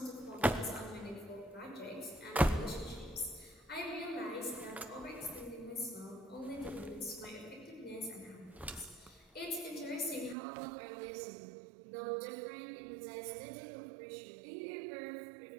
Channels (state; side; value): drops out; left; at 10.4 s